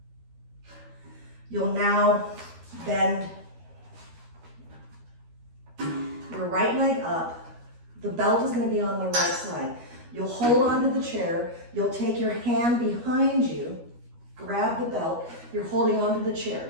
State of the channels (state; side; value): late; left; 12 ms